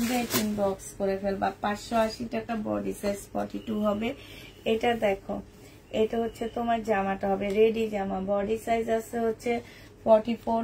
ইনবক্স করে ফেলবা। 580 টাকা, বডি সাইজ 42 হবে। এটা দেখো, এটা হচ্ছে তোমার জামাটা হবে, রেডি জামা। বডি সাইজ আছে হচ্ছে 44,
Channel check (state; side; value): identical; both; correlation 1.00